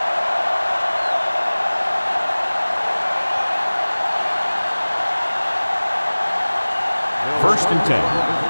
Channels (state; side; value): inverted; both; correlation -1.00